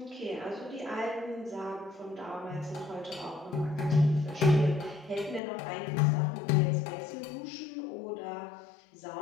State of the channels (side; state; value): right; drops out; at 5.4 s